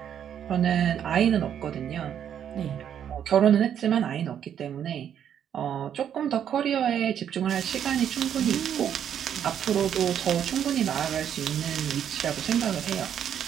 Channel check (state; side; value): quieter; left; 9.2 dB